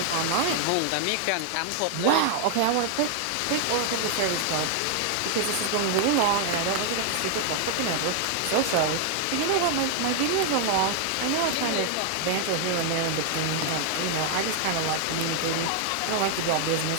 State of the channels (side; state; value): both; different; correlation 0.00